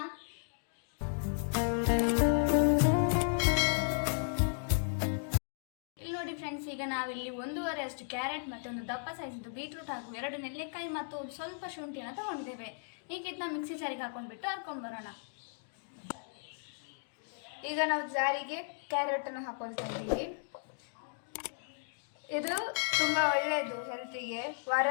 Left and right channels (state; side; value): silent; right; digital silence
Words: ಇಲ್ಲಿ ನೋಡಿ ಫ್ರೆಂಡ್ಸ್, ಈಗ ನಾವಿಲ್ಲಿ 1.5 ಅಷ್ಟು ಕ್ಯಾರೆಟ್ ಮತ್ತು ಒಂದು ದಪ್ಪ ಸೈಜ್ ಬೀಟ್ರೂಟ್ ಹಾಗೂ 2 ನೆಲ್ಲಿಕಾಯಿ ಮತ್ತು ಸ್ವಲ್ಪ ಶುಂಠಿಯನ್ನು ತಗೊಂಡಿದ್ದೇವೆ. ಈಗ ಇದನ್ನ ಮಿಕ್ಸಿ ಜಾರಿಗೆ ಹಾಕೊಂಡ್ಬಿಟ್ಟು ಹರ್ಕೊಂಡು ಬರೋಣ. ಈಗ ನಾವು ಜಾರಿಗೆ ಕ್ಯಾರೆಟನ್ನು ಹಾಕೊಳ್ತಾ ಇದ್ದೀವಿ. ಇದು ತುಂಬ ಒಳ್ಳೆಯದು ಹೆಲ್ತಿಗೆ.